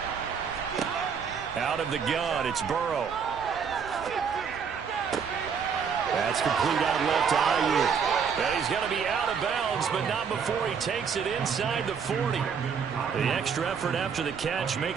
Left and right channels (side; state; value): left; quieter; 6.6 dB